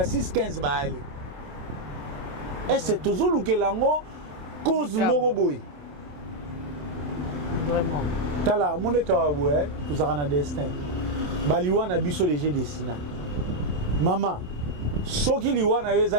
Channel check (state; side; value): late; left; 27 ms